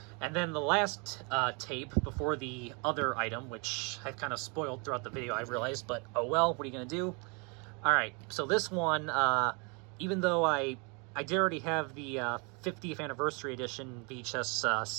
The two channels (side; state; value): left; quieter; 32.9 dB